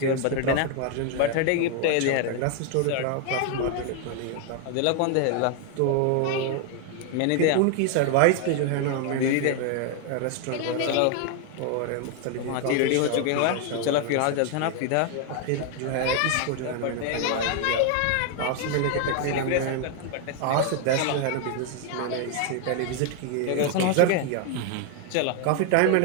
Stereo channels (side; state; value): both; different; correlation 0.00